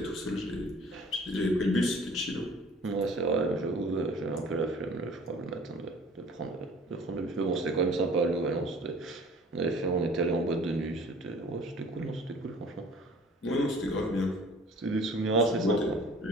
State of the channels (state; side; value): normal; both; correlation 0.49